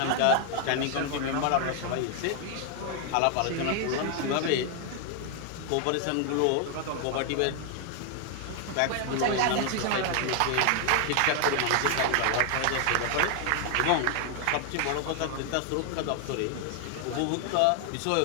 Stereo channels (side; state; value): both; different; correlation 0.00